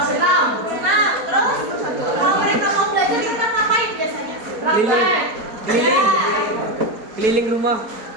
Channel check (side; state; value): left; late; 4.3 ms